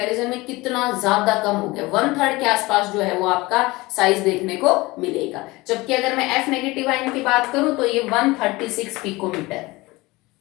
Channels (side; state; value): right; quieter; 21.6 dB